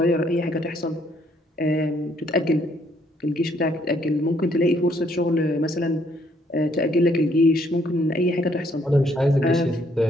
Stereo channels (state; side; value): normal; both; correlation 0.68